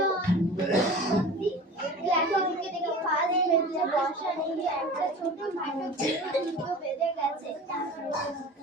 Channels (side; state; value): both; normal; correlation 0.38